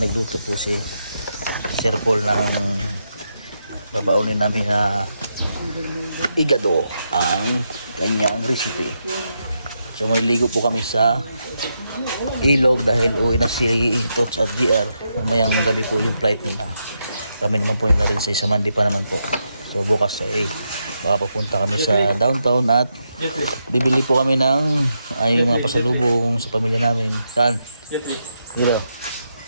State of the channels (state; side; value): inverted; both; correlation -0.83